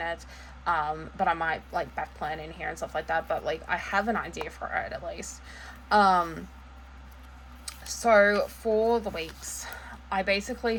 it, but I might like back plan in here and stuff like that, but like I have an idea for it at least. So for the weeks, I basically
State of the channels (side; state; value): both; identical; correlation 1.00